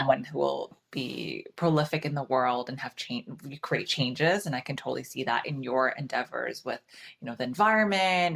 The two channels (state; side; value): identical; both; correlation 1.00